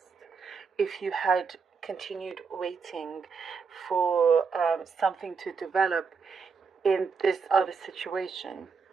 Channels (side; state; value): left; quieter; 5.4 dB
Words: if you had continued waiting for something to develop in this other situation.